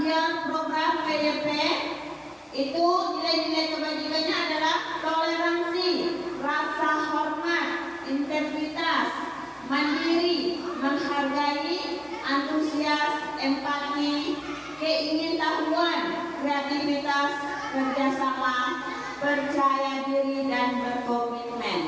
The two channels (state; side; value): identical; both; correlation 1.00